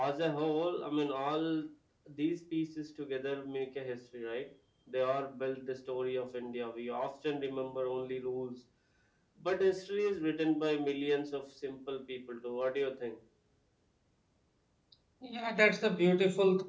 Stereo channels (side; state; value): both; identical; correlation 1.00